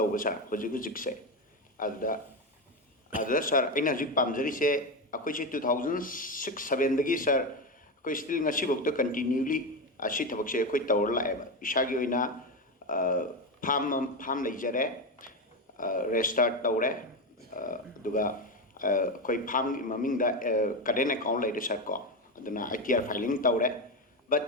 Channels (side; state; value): both; normal; correlation 0.14